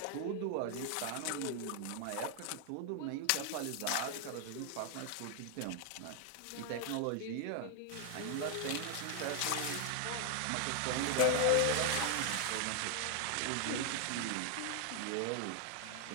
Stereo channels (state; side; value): different; both; correlation 0.00